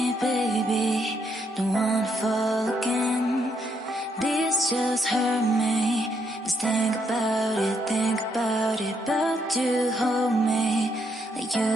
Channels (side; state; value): both; normal; correlation 0.75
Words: baby. Don't wanna fall again. This just hurt me. Just think about it, but you hold me like you